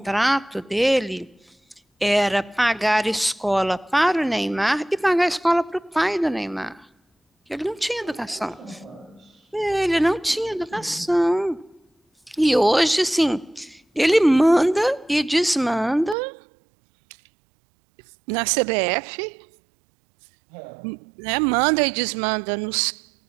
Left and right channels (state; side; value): drops out; left; at 16.2 s